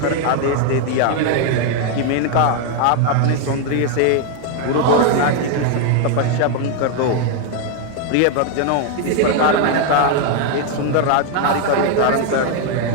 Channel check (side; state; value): both; different; correlation 0.01